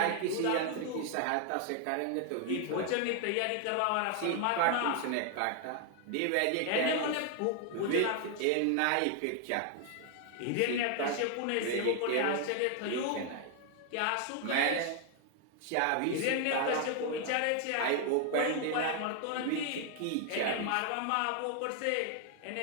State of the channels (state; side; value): different; both; correlation 0.00